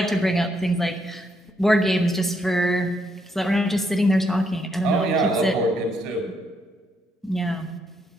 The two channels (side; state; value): both; normal; correlation 0.75